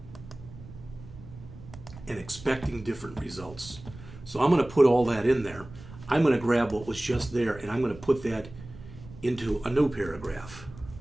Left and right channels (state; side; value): noise; right; rumble, 16 dB below the sound